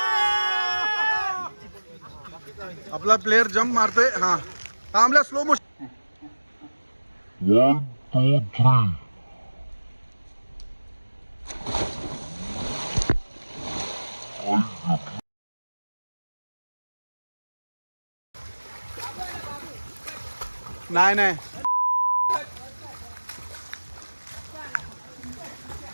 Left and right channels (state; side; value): inverted; both; correlation -1.00